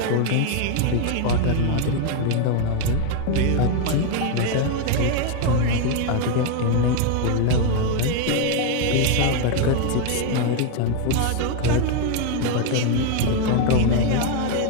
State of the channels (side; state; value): both; different; correlation 0.01